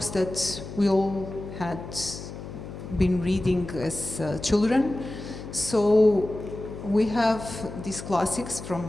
that we all had been reading as children. So we have these classics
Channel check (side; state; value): left; noise; hum, 11 dB below the sound